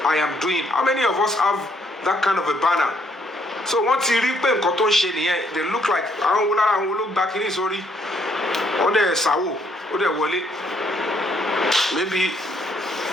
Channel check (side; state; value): both; normal; correlation 0.70